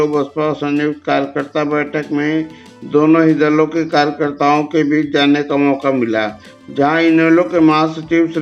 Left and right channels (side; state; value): both; identical; correlation 1.00